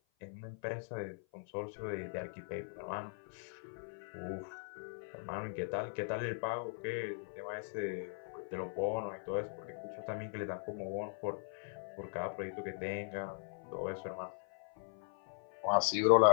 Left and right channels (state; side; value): silent; right; 51 dB below the other